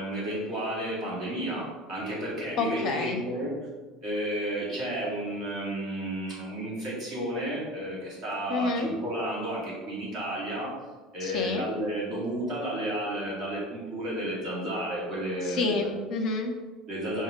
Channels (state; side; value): normal; both; correlation 0.34